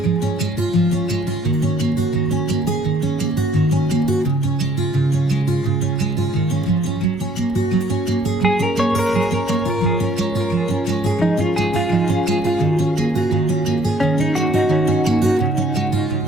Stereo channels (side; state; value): both; normal; correlation 0.62